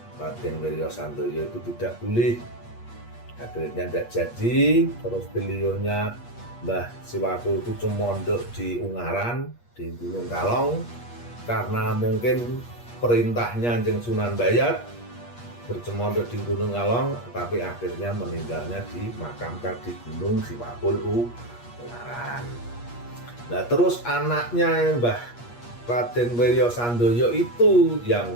Wirya Sandoyo itu tidak boleh. Akhirnya tidak jadi. Terus beliaunya Mbah Siwakul itu cumondok di Ungaran di Gunung Kalong, karena mungkin perintahnya Jeng Sunan Dayat bercemondok di Gunung Kalong, tapi akhirnya meninggalnya dimakamkan di Gunung Siwakul Ungaran. Nah terus anaknya Mbah Raden Wirya Sandoyo itu yang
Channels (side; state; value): right; late; 8.4 ms